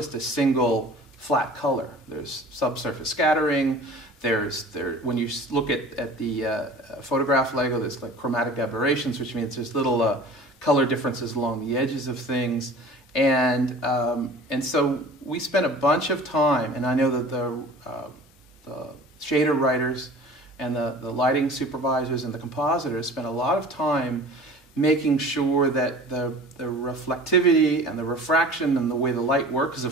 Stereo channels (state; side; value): normal; both; correlation 0.43